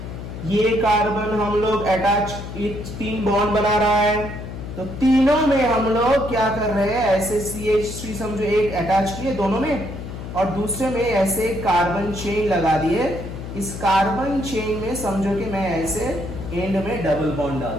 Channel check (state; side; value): noise; left; hum, 9 dB below the sound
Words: ये कार्बन हम लोग अटैच 3 बॉन्ड बना रहा है। तो तीनों में हम लोग क्या कर रहे हैं, ऐसे CH3 समझो एक अटैच किए दोनों में, और दूसरे में ऐसे कार्बन चेन लगा दिए। इस कार्बन चेन में समझो कि मैं ऐसे एंड में डबल बॉन्ड डाल